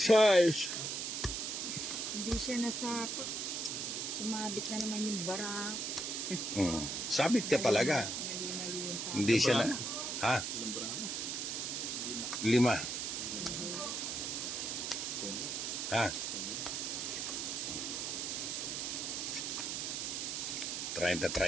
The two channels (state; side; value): noise; right; hiss, 2 dB below the sound